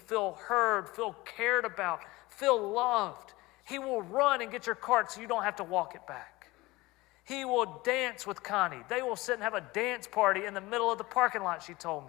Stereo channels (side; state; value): right; quieter; 20.7 dB